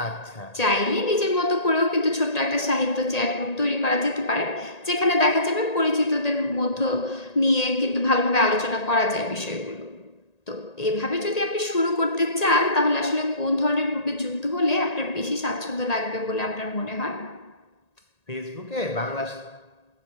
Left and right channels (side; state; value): right; late; 1.8 ms